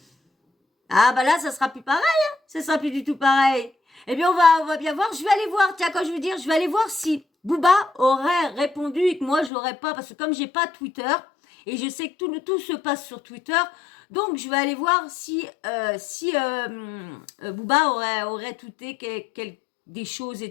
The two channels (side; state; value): right; drops out; at 9.5 s